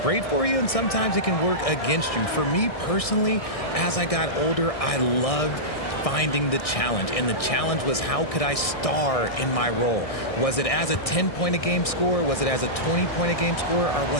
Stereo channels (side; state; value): right; late; 1.6 ms